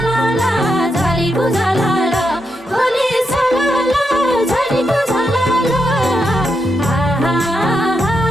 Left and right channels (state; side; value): normal; both; correlation 0.84